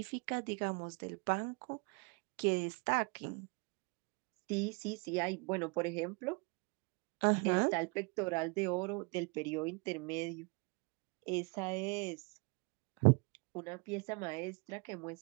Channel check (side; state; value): left; quieter; 31.7 dB